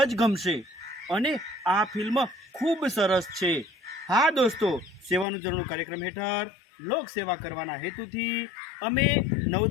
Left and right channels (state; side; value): drops out; right; at 5.2 s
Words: જ ગમશે અને આ ફિલ્મ ખૂબ સરસ છે. હા દોસ્તો, સેવાનું ઝરણું કાર્યક્રમ હેઠળ લોક સેવા કરવાના હેતુથી અમે